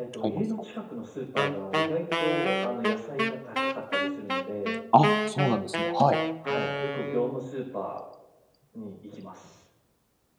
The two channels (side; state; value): both; identical; correlation 1.00